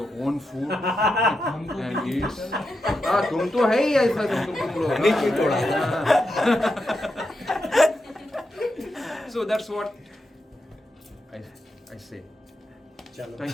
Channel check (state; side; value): normal; both; correlation 0.86